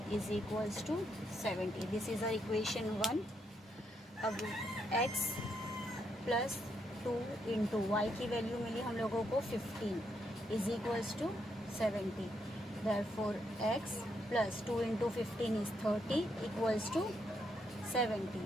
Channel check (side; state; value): both; normal; correlation 0.78